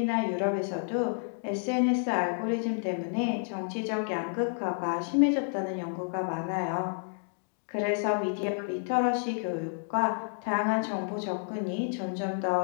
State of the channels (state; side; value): silent; right; digital silence